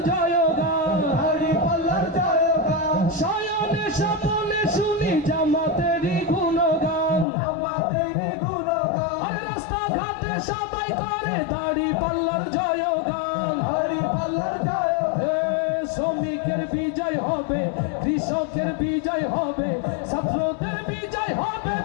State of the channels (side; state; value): right; drops out; at 7.2 s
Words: জয়গান শয়নে স্বপনে শুনি জামাতেরই গুণগান রাস্তাঘাটে সবাই করে দাড়ি পাল্লার জয়গান শ্রমিকের বিজয় হবে কৃষকের বিজয় হবে ছাত্রদের বিজয় হবে